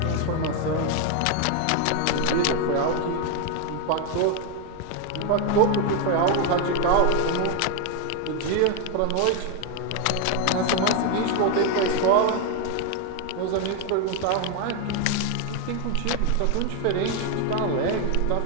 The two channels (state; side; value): different; both; correlation 0.01